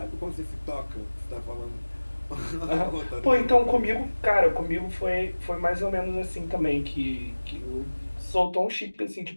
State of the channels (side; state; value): both; inverted; correlation -1.00